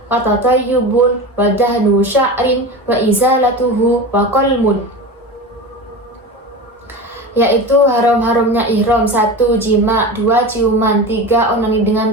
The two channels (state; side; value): normal; both; correlation 0.28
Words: wa tatayyubun wa dahnu sya'rin wa izalatuhu wa qalmun. Yaitu haram-haramnya ihram: 1. Jima, 2. Ciuman, 3. Onani dengan